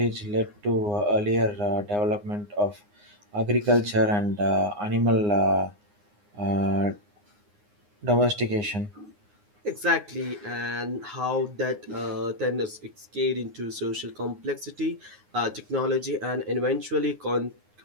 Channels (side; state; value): left; late; 9.7 ms